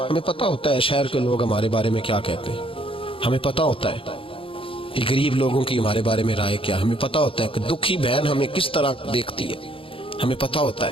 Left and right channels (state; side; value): late; right; 0.26 ms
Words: پتہ ہوتا ہے شہر کے لوگ ہمارے بارے میں کیا کہتے ہیں، ہمیں پتہ ہوتا ہے کہ غریب لوگوں کی ہمارے بارے میں رائے کیا، ہمیں پتہ ہوتا ہے کہ دکھی بہن ہمیں کس طرح دیکھتی ہے، ہمیں پتہ ہوتا